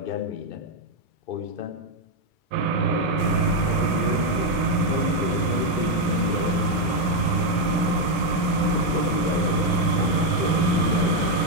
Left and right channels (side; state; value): right; late; 2.3 ms